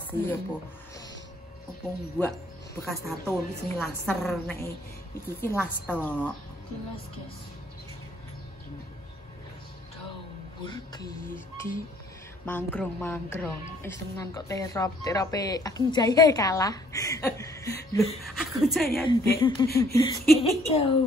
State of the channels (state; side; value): normal; both; correlation 0.63